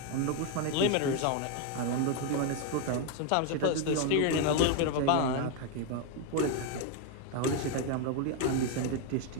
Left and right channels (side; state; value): both; different; correlation 0.01